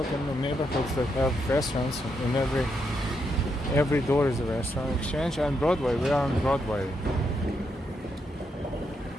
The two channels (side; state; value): both; normal; correlation 0.80